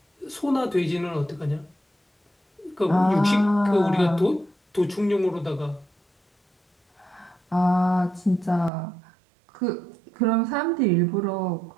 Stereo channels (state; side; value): drops out; left; at 8.7 s